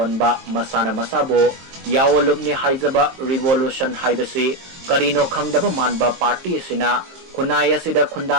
मसाना मसाबो यावलुबनि हाइजबा रिवोल्यूशन हाइबसी करिनो खंगदबा मानबा पार्टी सिना खुनाय असिदा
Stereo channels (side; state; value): left; late; 22 ms